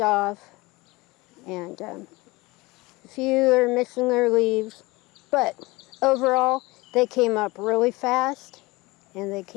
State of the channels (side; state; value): right; quieter; 22.5 dB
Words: off, and a few are missing their leaves, but overall they came up really fast, and they